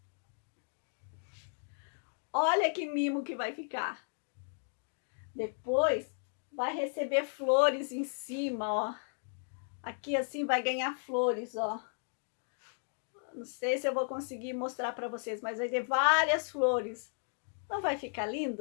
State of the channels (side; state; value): right; silent; digital silence